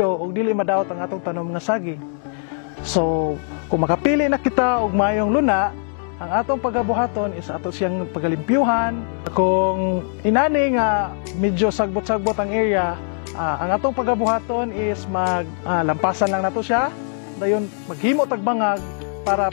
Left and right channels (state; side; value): silent; right; 59 dB below the other